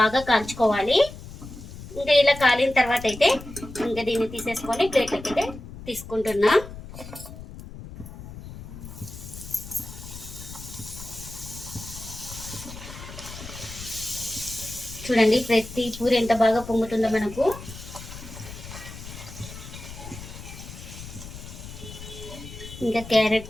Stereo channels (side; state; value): left; noise; rumble, 13 dB below the sound